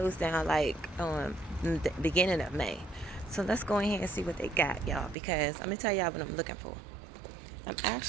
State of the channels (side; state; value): left; drops out; at 5.2 s